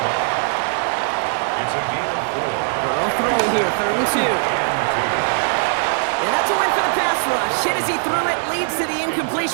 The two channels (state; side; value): silent; left; 55 dB below the other